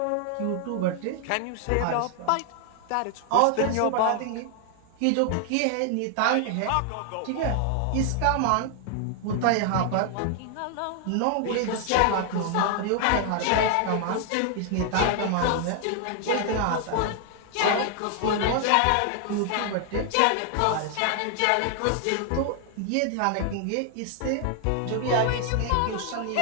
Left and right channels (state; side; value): different; both; correlation 0.00